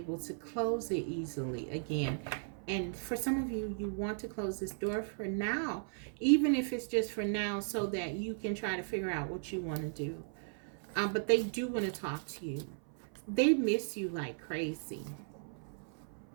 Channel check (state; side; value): silent; left; 54 dB below the other